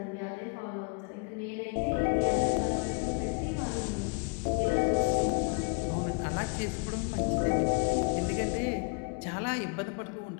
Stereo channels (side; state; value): right; quieter; 33.4 dB